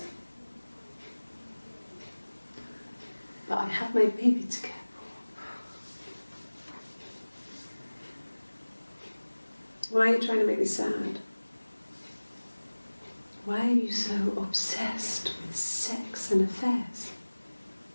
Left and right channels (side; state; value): both; inverted; correlation -1.00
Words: But I have my baby to care for. Why are you trying to make me sad? Why are you so obsessed with sex and affairs?